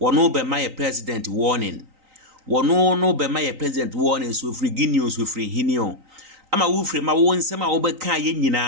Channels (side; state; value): left; late; 3.9 ms